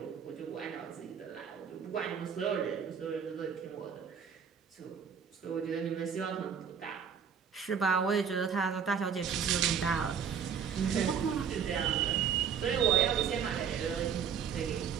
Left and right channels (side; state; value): left; quieter; 7.2 dB